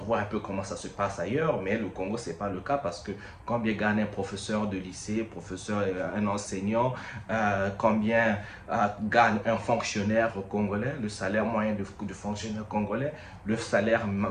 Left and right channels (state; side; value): identical; both; correlation 1.00